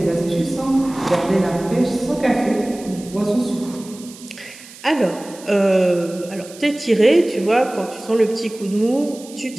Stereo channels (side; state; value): right; noise; hiss, 19 dB below the sound